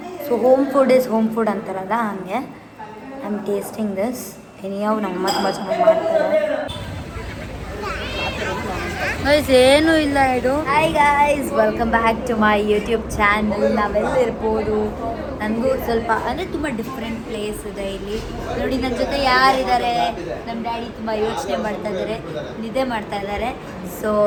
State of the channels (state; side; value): identical; both; correlation 1.00